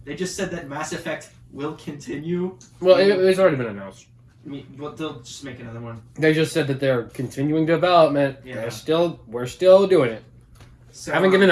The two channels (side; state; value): both; identical; correlation 1.00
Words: They just said that Mass Effect will continue. Well, it's already been announced. I mean, well, they'll just make another one. They just said that they're continuing development. Yeah. We're still doing it. So, Haven't given